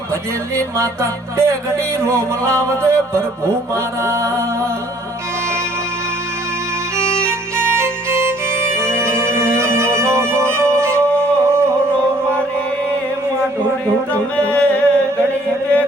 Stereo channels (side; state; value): both; normal; correlation 0.59